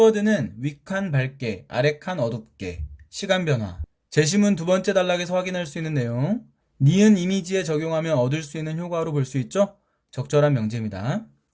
윗칸 밝게, 아래칸 어둡게, 시간 변화. 제시문 두 번째 단락에서 확인할 수 있는 내용. 니은 이미지에 적용하면 얻을 수 있는 효과로 볼 수 있죠? 적절한 명제입니다.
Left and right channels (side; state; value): both; identical; correlation 1.00